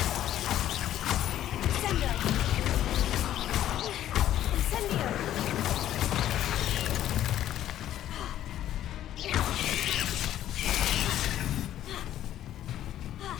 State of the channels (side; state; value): right; quieter; 12.2 dB